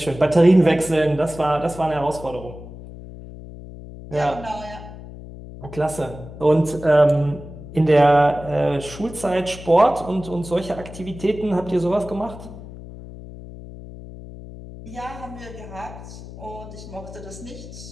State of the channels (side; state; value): left; noise; hum, 14 dB below the sound